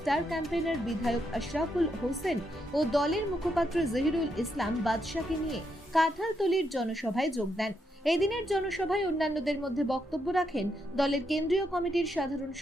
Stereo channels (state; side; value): normal; both; correlation 0.80